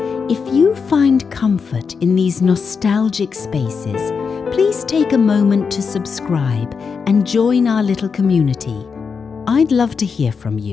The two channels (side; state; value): right; quieter; 5.6 dB